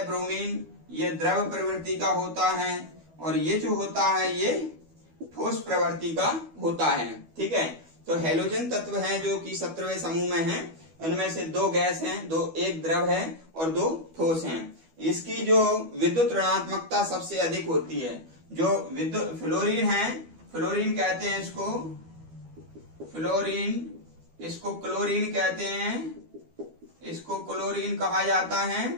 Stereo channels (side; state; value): left; late; 12 ms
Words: ब्रोमीन, ये द्रव प्रवृत्ति का होता है। और ये जो होता है ये ठोस प्रवृत्ति का होता है। ठीक है, तो हैलोजन तत्व हैं जो कि 17वें समूह में हैं। उनमें से 2 गैस हैं, एक द्रव है और 2 ठोस हैं। इसकी जो विद्युत ऋणात्मकता सबसे अधिक होती है। जो विद्युत फ्लोरीन है, फ्लोरीन कहते हैं इसको, इसको क्लोरीन कहते हैं, इसको क्लोरीन कहा जाता है,